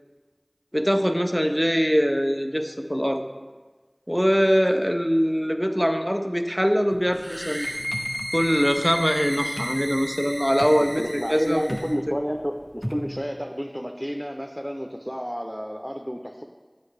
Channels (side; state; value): both; identical; correlation 1.00